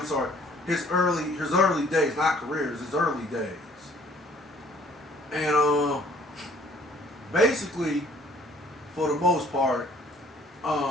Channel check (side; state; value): both; normal; correlation 0.57